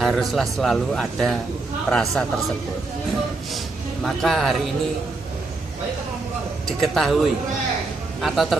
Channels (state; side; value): quieter; left; 3.5 dB